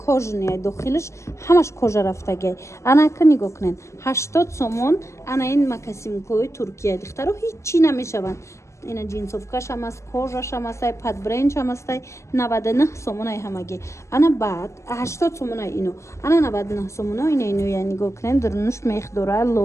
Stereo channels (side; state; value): right; late; 0.14 ms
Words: дохилиш ҳамаш кожа рафтагиай анака нигоҳ кунен 80 сомон ана ин макасимкои туркияи духтаро ҳичи намешаванд ина джинсовкашам аст кожашам астай падбренчам астай 99 сомонай ҳамагӣ ана баъд 80 сомонай ино ана 99 сомона ина иноя нигоҳ кунем дурнуш мех дора